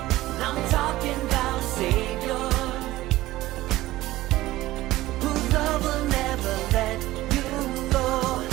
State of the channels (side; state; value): left; quieter; 16.8 dB